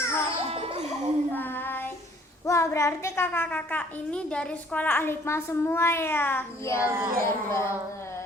Wah, berarti kakak-kakak ini dari sekolah Al-Hikmah semua ya? Iya, benar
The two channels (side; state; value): both; normal; correlation 0.59